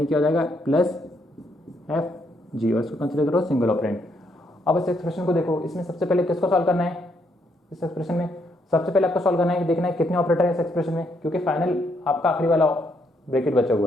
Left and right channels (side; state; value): both; normal; correlation 0.74